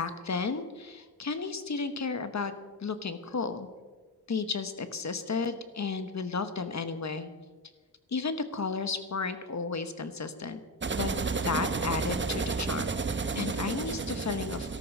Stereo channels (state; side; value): normal; both; correlation 0.14